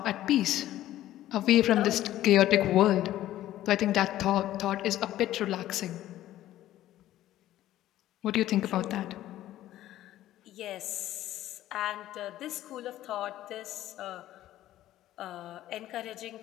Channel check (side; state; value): right; quieter; 13.8 dB